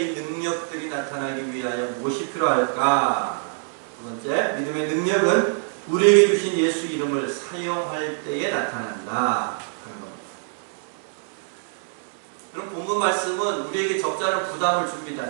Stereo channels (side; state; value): left; silent; digital silence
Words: 능력들이 나타나기 위하여 무엇이 필요할까? 두 번째, 믿음의 능력은 우리에게 주신 예수 이름을 사용할 때에 나타난다. 그럼 본문 말씀은 우리에게 적지 않은 부담을